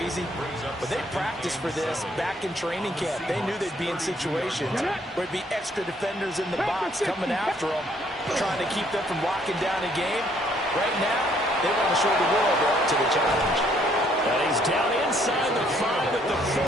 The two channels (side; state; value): both; normal; correlation 0.66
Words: but they practiced for this back in training camp. They knew they'd be in situations where there'd be extra defenders in the box coming after them, trying to keep them from locking down a game. Right now, they want to show the world up to the challenge. And he's down inside the 5 at the 4